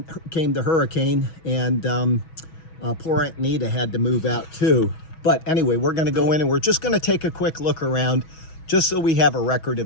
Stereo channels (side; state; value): right; late; 6.2 ms